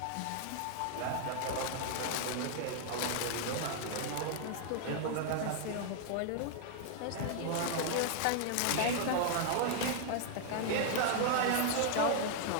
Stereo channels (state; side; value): different; both; correlation 0.00